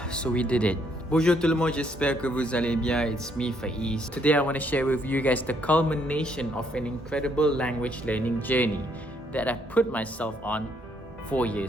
So we did it. Bonjour tout le monde, j'espère que vous allez bien. It's me, Faiz. Today I want to share with you guys the culmination of an incredible language learning journey that I put myself on 4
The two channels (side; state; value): both; normal; correlation 0.70